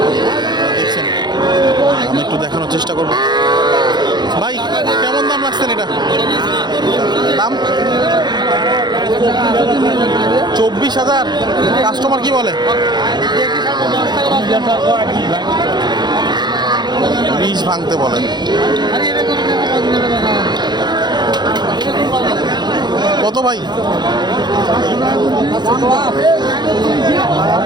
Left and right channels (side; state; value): left; late; 0.21 ms